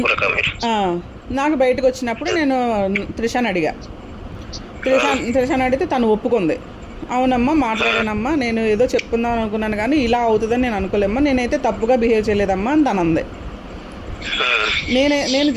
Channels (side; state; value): both; identical; correlation 1.00